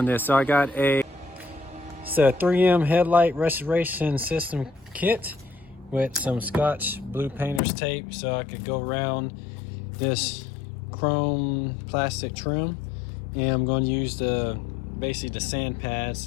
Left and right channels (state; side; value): drops out; right; at 7.6 s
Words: this. So I got it's a 3M headlight restoration system kit with some Scotch blue painter's tape, so I could go around this chrome plastic trim, and I'm going to use basically the sand pads